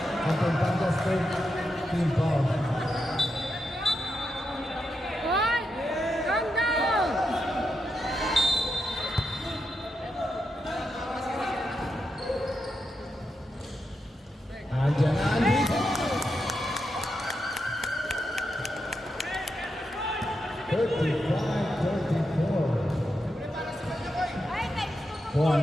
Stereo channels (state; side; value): normal; both; correlation 0.85